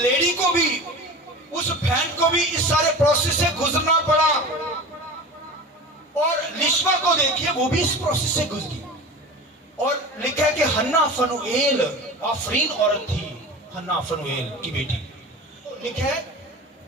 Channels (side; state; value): both; normal; correlation 0.34